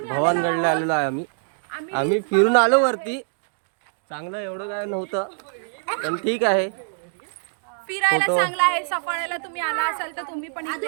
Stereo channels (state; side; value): silent; left; digital silence